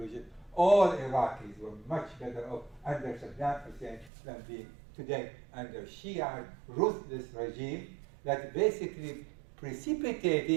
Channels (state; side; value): drops out; left; at 4.1 s